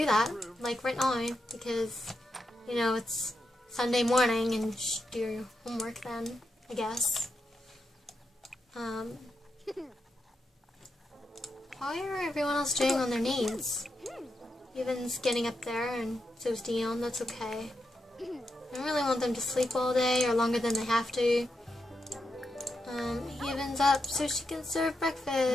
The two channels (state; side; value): normal; both; correlation 0.85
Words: that, like right now, because, you know, it's Sunday morning and you should do your homework then, I guess. How are everyone else doing on their knees? Evan's getting up there, and so's Dion. That's okay. I don't really want them to sleep all day or longer than they have to. Evan's up so she can serve